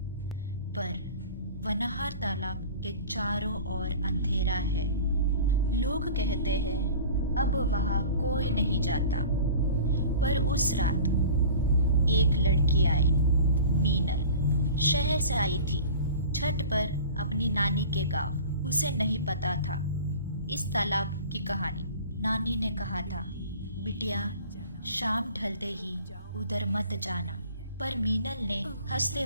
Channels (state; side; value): inverted; both; correlation -0.41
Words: पर वनहार तालाब के चारों ओर अंधेरा है। लोग कहते हैं अब वहाँ कोई नहीं जाता। पर उस रात एक लड़की आई, मीनल। शहर से आई थी छठ पर अपनी नानी के गांव। उसे नहीं पता था इस तालाब की कहानी। नानी ने कहा था, बिटिया शाम ढलते ही उधर मत जाना। पर मीनल ने हंसते